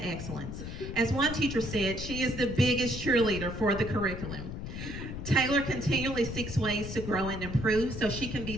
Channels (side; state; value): left; noise; rumble, 7 dB below the sound